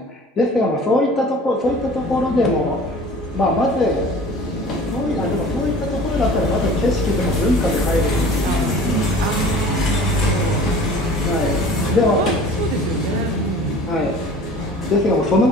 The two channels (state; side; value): normal; both; correlation 0.45